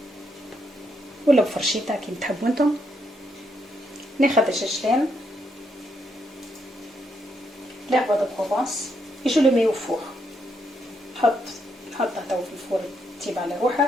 ولا بفرشيطه كي تحبوا انتم. ناخذ الجاجلان l'herbe de Provence et je le mets au four. نحطه تو في الفور تيب على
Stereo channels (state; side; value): normal; both; correlation 0.77